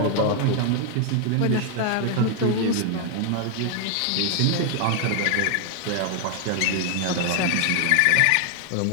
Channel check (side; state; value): both; different; correlation 0.00